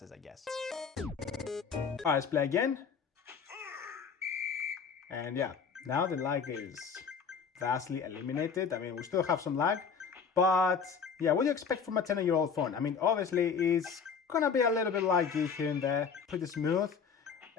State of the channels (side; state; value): right; quieter; 6.1 dB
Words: I guess. Alright, let's play again. And yeah, now the lag is vastly eliminated. I mean, we still have some lag, but yeah, what do you expect from a 10-year-old phone? I mean, obviously it's gonna be a little bit laggy here and there, pretty smooth,